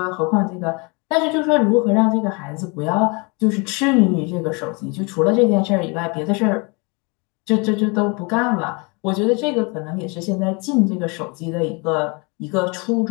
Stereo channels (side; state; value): right; quieter; 30.4 dB